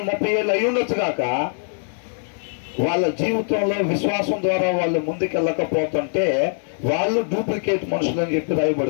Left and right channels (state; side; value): silent; right; 64 dB below the other